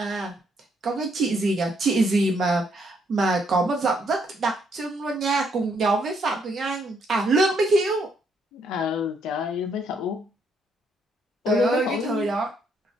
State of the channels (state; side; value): normal; both; correlation 0.72